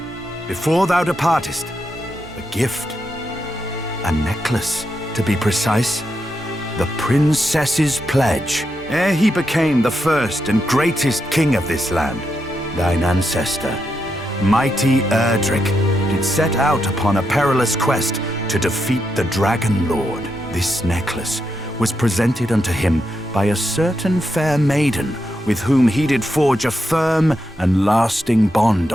before thou departest, a gift. A necklace, to be precise. The princess's pledge. Ere he became the first and greatest king of this land, thine ancestor, mighty Erdrick, did set out upon a perilous quest to defeat the Dragon Lord. This necklace was presented unto him by a certain fair maiden with whom he did forge a firm and lasting bond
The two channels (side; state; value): both; normal; correlation 0.84